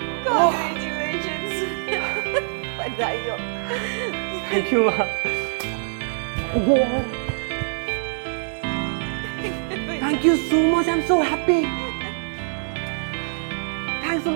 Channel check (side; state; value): left; silent; 63 dB below the other